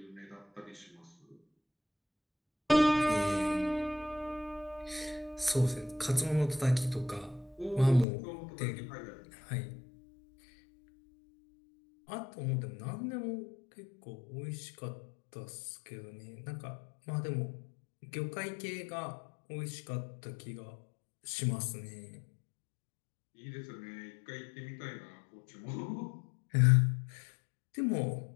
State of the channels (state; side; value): drops out; right; at 8.1 s